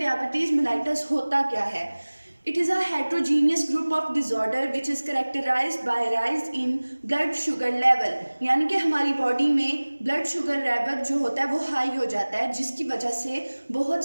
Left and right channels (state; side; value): inverted; both; correlation -1.00